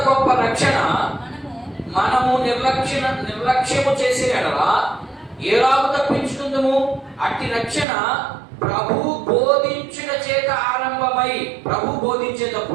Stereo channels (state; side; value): drops out; left; at 7.9 s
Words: గొప్ప రక్షణ మనము నిర్లక్ష్యము చేసే ఎడలా ఏలాగు తప్పించుకుందాము? అట్టి రక్షణ ప్రభు బోధించుట చేత ఆరంభమై, ప్రభు